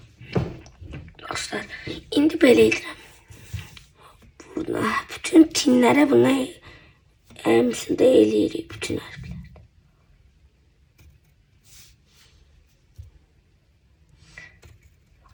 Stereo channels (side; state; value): both; identical; correlation 1.00